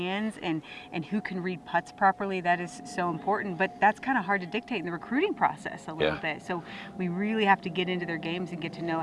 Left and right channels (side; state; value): both; identical; correlation 1.00